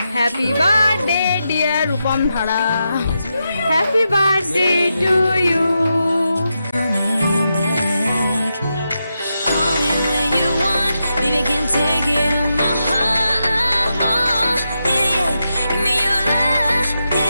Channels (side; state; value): both; inverted; correlation -0.86